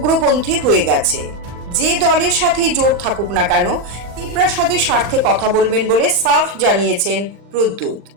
হয়ে গেছে। যে দলের সাথেই জোট থাকুক না কেন, তিপ্রাসাদের স্বার্থে কথা বলবেন বলে সাফ জানিয়েছেন প্রদ্যুৎ।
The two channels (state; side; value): late; left; 40 ms